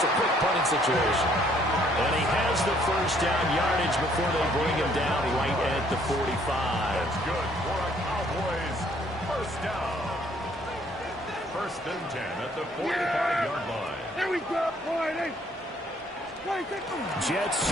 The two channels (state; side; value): normal; both; correlation 0.64